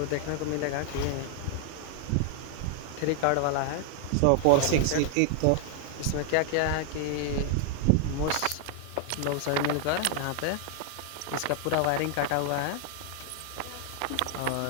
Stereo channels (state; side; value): different; both; correlation 0.00